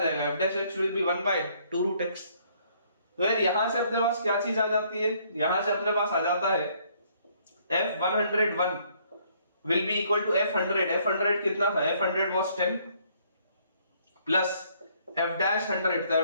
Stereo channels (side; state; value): both; inverted; correlation -0.65